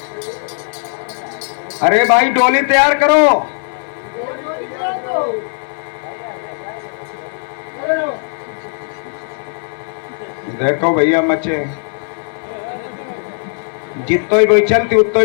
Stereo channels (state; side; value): silent; right; 68 dB below the other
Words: अरे भाई डोली तैयार करो। देखो भैया मचे जितो ही बोई चलती उतो